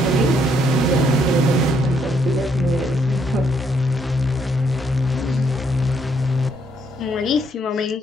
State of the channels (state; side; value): normal; both; correlation 0.71